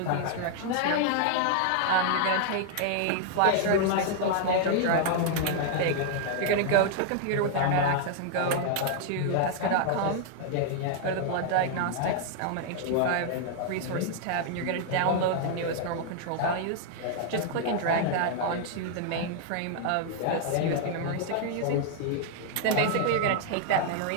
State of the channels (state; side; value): different; both; correlation 0.00